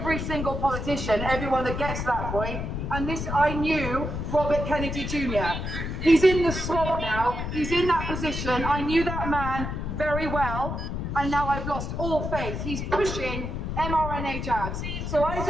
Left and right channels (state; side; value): noise; left; rumble, 4 dB below the sound